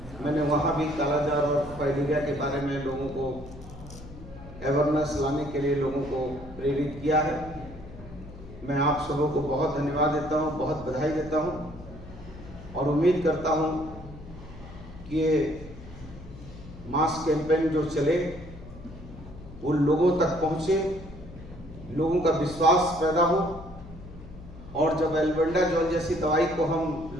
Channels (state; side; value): noise; left; hum, 16 dB below the sound